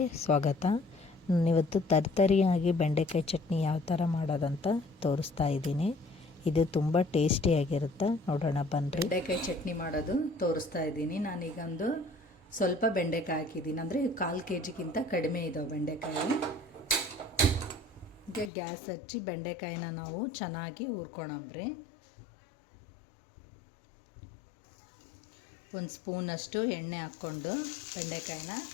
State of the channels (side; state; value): right; drops out; at 18.5 s